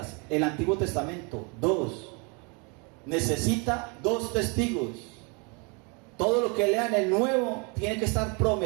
el Antiguo Testamento, 2. Necesita 2 testigos. Todo lo que lea en el Nuevo tiene que estar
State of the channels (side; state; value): left; quieter; 32.5 dB